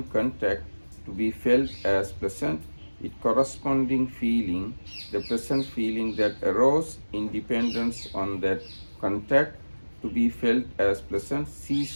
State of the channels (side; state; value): both; inverted; correlation -1.00